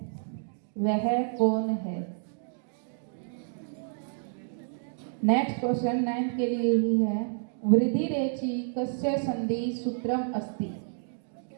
वह कौन है। नेक्स्ट क्वेश्चन 9th के लिए ही है, वृद्धि रेचि कस्य संधि सूत्रम अस्ति?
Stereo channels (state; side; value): silent; left; digital silence